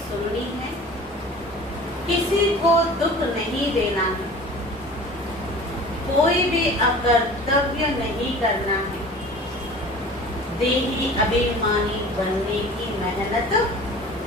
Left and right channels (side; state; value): both; normal; correlation 0.42